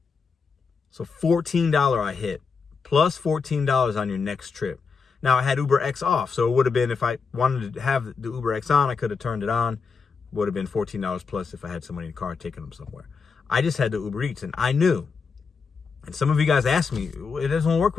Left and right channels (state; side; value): quieter; right; 5.2 dB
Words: So $14 I hit, plus $14 on your next trip. Now I had Uber X off. So it would have been, if I wanted to have the Uber X on, I could have turned it on. Would have been $14 plus if I had somebody in the car taking them somewhere. I just had the Uber Eats, and I knew. And some of you guys asked me, it doesn't work